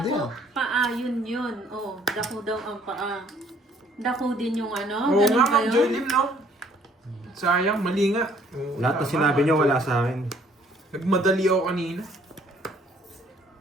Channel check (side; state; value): both; normal; correlation 0.61